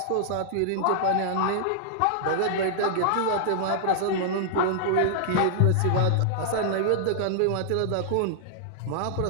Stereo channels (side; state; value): both; different; correlation -0.01